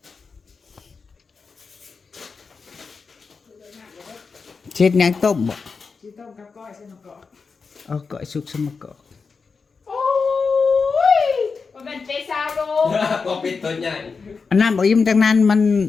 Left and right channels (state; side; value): quieter; right; 4.9 dB